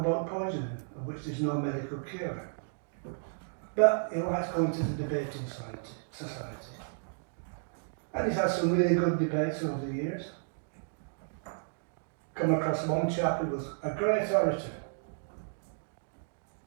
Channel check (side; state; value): left; silent; digital silence